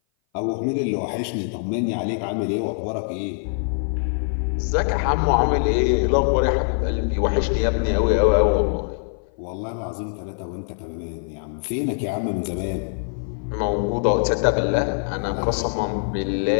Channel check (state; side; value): silent; right; 58 dB below the other